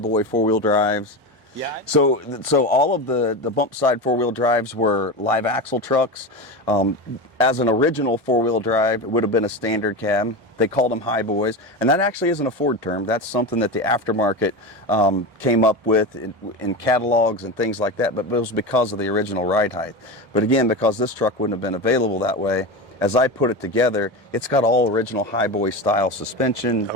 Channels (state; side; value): normal; both; correlation 0.22